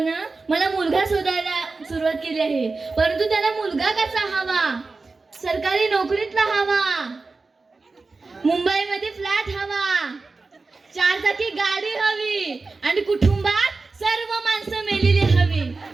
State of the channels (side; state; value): left; quieter; 3.8 dB